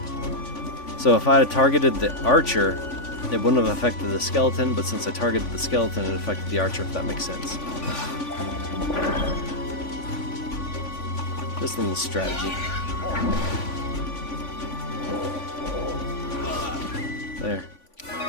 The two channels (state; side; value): late; right; 3.5 ms